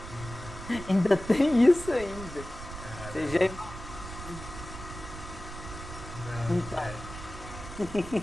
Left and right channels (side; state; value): right; noise; rumble, 11 dB below the sound